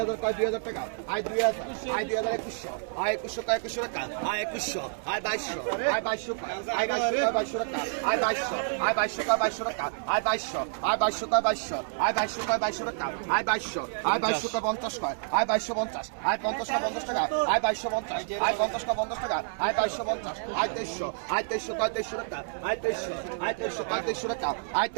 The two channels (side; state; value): left; silent; 59 dB below the other